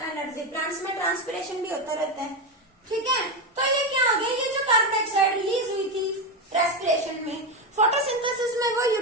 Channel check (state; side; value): normal; both; correlation 0.12